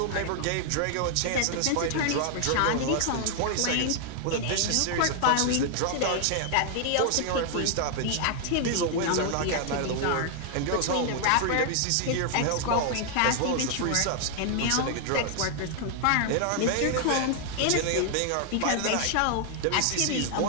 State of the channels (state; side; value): different; both; correlation 0.00